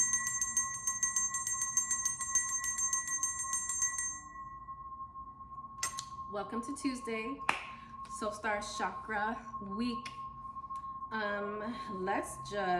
Welcome to Tuesday, Soul Star Chakra week. Let's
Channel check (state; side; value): identical; both; correlation 1.00